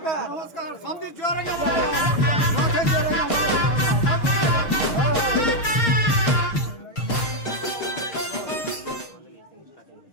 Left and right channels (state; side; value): late; right; 6.5 ms